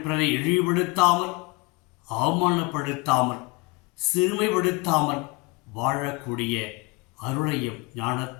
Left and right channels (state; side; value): quieter; right; 25.8 dB